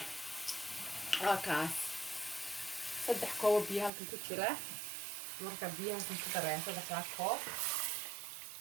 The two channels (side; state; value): left; drops out; at 3.9 s